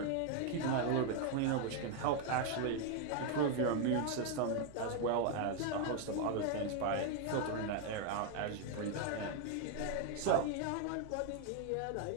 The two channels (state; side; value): different; both; correlation 0.00